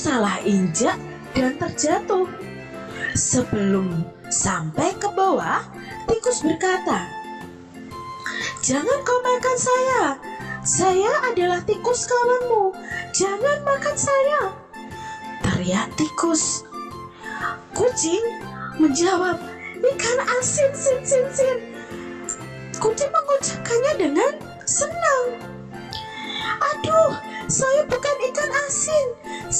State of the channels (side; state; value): both; identical; correlation 1.00